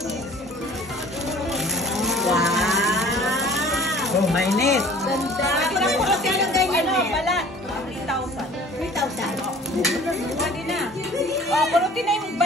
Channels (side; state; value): both; normal; correlation 0.49